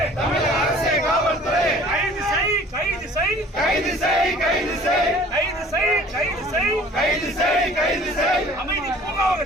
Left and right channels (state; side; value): normal; both; correlation 0.50